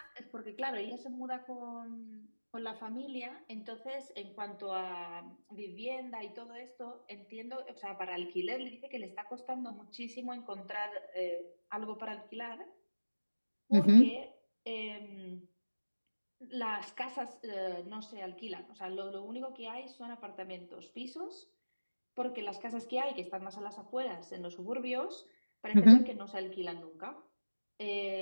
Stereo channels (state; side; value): inverted; both; correlation -1.00